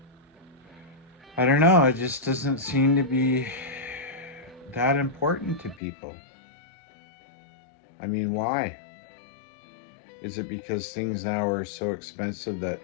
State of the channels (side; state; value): right; drops out; at 5.8 s